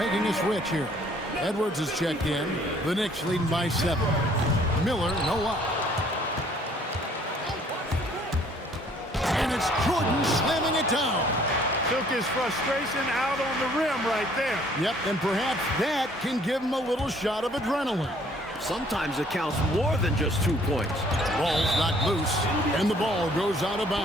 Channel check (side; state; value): both; normal; correlation 0.60